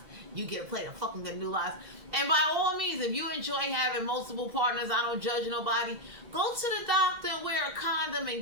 you get a plate of fucking gandulas. And by all means, if you enjoy having multiple partners, I don't judge nobody, go to the doctor and wear a condom and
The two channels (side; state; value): left; late; 1.9 ms